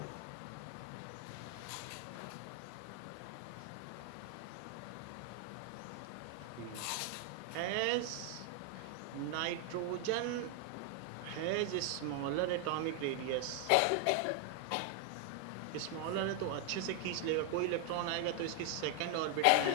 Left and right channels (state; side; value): different; both; correlation 0.00